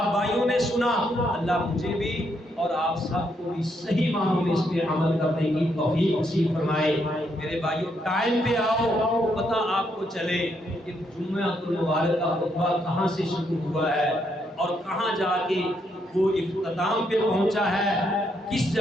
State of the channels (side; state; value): both; normal; correlation 0.76